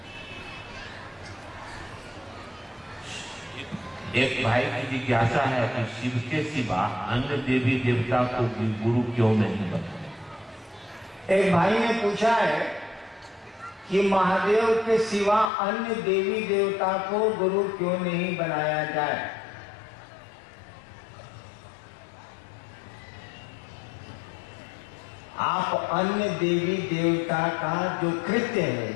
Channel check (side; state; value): right; drops out; at 15.5 s